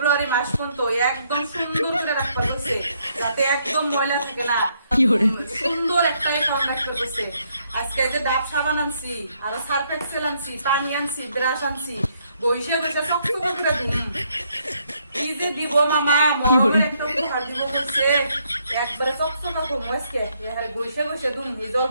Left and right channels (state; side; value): inverted; both; correlation -0.72